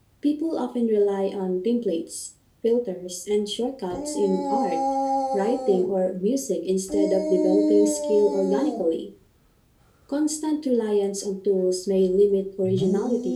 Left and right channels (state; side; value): identical; both; correlation 1.00